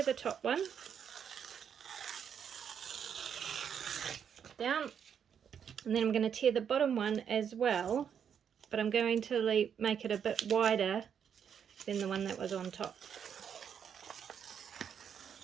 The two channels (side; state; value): left; quieter; 7.9 dB